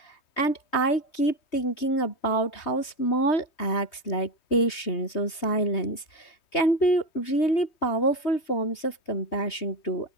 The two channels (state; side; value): late; right; 3.2 ms